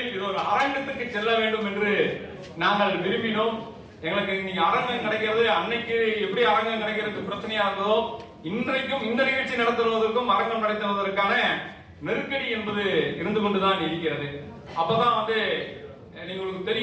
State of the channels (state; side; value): identical; both; correlation 1.00